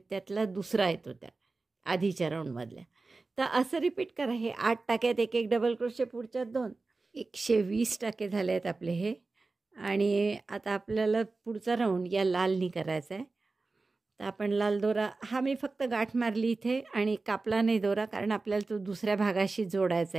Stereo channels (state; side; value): quieter; left; 3.7 dB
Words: दुसरा येतो त्या आधीच्या राऊंडमधल्या. तर असं रिपीट करा. हे 8 टाक्यात 1-1 डबल क्रोशे, पुढच्यात 2. 120 टाके झाले आहेत आपले हे. आणि आता आपल्याला पुढचा राऊंड या लालनी करायचा आहे. तर आपण लाल दोरा, हा मी फक्त गाठ मारली इथे आणि कापला नाही दोरा, कारण आपल्याला तो दुसऱ्या भागाशी जोडायचा